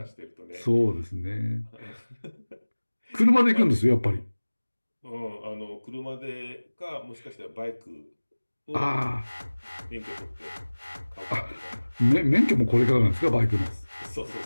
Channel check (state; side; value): inverted; both; correlation -1.00